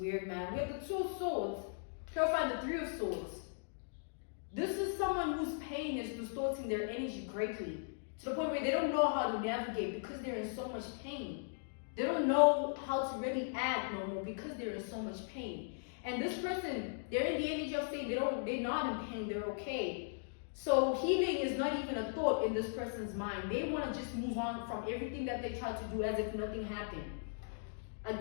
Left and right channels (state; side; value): silent; right; digital silence